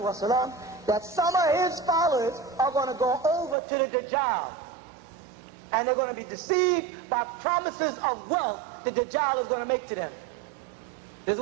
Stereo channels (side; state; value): left; drops out; at 3.6 s